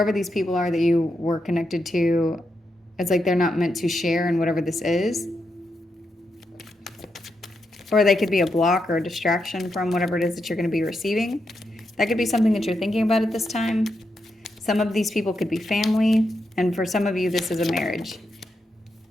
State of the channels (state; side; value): normal; both; correlation 0.84